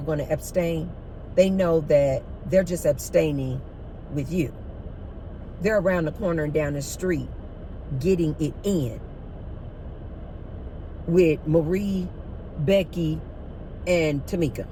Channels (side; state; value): both; identical; correlation 1.00